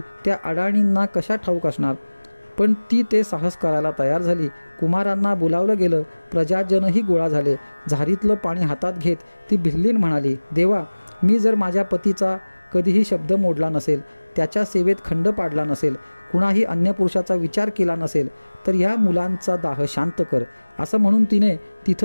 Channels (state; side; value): inverted; both; correlation -1.00